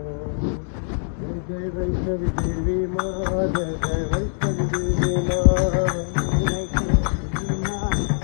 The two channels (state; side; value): silent; right; 63 dB below the other